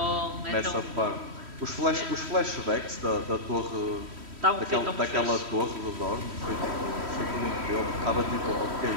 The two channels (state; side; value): late; left; 3.1 ms